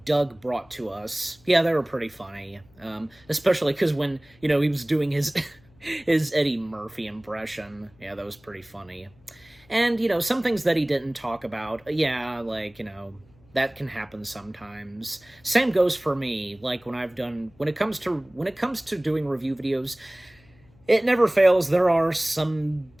Doug brought to us, yeah, they were pretty funny. Especially because when, you know, he was doing his his Eddie Murphy impression, yeah, that was pretty funny. And, you know, some things that he didn't talk about, yeah, like, you know, that can happen sometimes. Same goes for me, like, when it comes to doing review videos, it never fails. There are some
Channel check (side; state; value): left; noise; hum, 29 dB below the sound